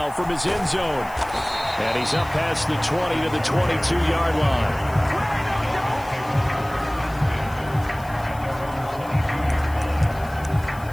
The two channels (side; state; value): left; noise; hiss, 22 dB below the sound